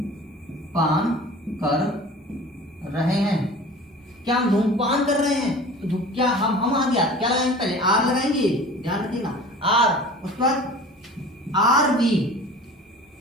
कर रहे हैं, क्या हम धूम्रपान कर रहे हैं, तो क्या हम आ गया, क्या लगाएंगे, पहले आर लगाएंगे, ध्यान रखिएगा, आर, उसके बाद R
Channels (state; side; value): normal; both; correlation 0.41